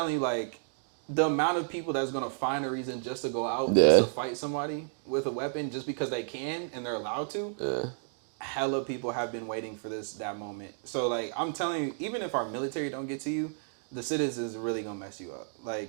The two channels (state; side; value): silent; left; digital silence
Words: you, like, the amount of people that's gonna find a reason just to go out, just Yeah. to fight somebody with a weapon, just because they can and they're allowed to. Yeah. Hella people have been waiting for that moment. So like I'm telling you, even if our military don't get to you, the citizens are really gonna mess you up.